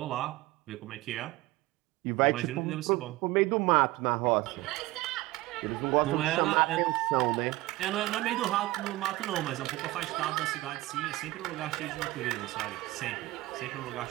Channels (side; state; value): left; quieter; 19.0 dB